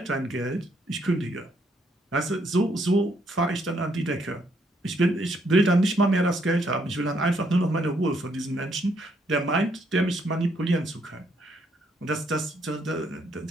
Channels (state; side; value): normal; both; correlation 0.72